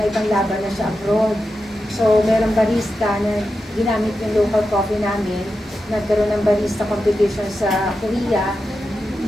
ibang laban na siya abroad. So meron barista na ginamit yung local coffee namin. Nagkaroon ng barista competition sa Korea.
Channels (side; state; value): both; normal; correlation 0.90